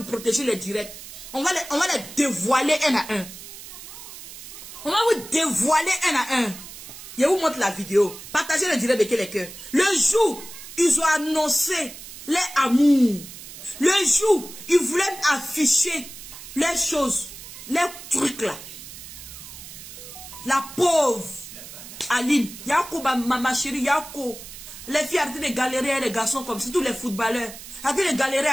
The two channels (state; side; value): noise; right; hiss, 14 dB below the sound